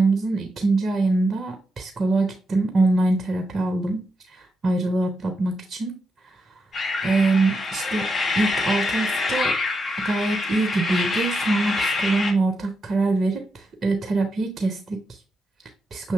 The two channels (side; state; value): both; normal; correlation 0.85